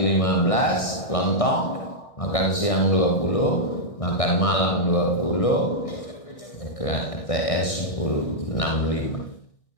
15 lontong, makan siang 20, makan malam 20, TS 10, 65.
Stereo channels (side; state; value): right; late; 1.6 ms